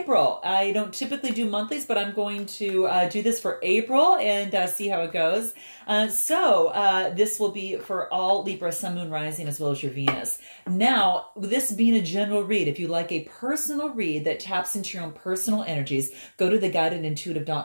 I don't typically do monthlies, but I'm going to do this for April and see how it goes. This will be for all Libra, Sun, Moon, Rising, as well as your Venus. Now, this being a general read, if you like a personal read that taps into your own personal energies, go to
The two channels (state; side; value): inverted; both; correlation -1.00